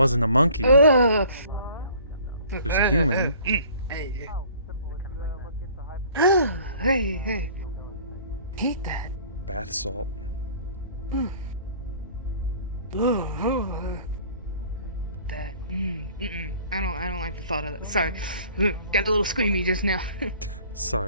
a monkey. Ugh. It was a human. Hey, hey. Hate that. Bath salt. That. I don't like the thought of that. Sorry. Got a little squeamy just now.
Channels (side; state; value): both; inverted; correlation -0.51